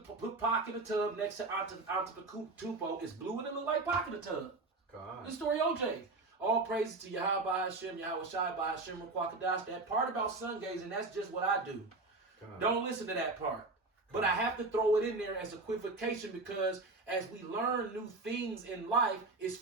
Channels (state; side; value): quieter; left; 3.4 dB